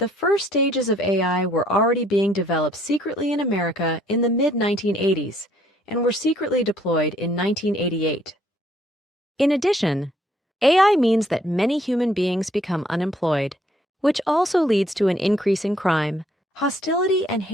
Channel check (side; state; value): both; normal; correlation 0.65